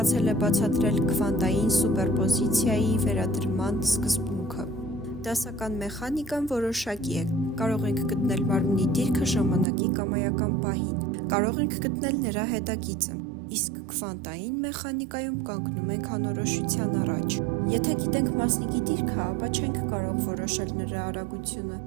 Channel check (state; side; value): drops out; left; at 9.7 s